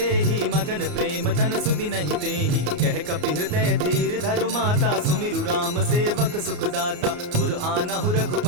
मगन प्रेम तन सुधि नहीं तेहि। कह कपि हृदय धीर धरु माता सुमिरु राम सेवक सुखदाता। उर आनहु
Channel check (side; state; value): left; late; 34 ms